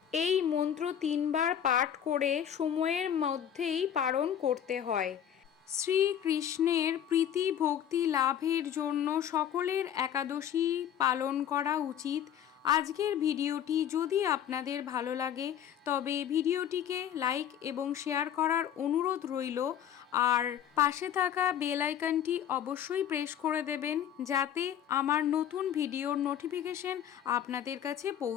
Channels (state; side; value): quieter; right; 9.7 dB